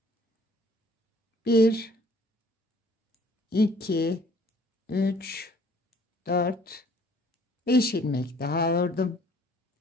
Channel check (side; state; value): both; normal; correlation 0.57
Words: 1 2 3 4 5 ilmek daha ördüm.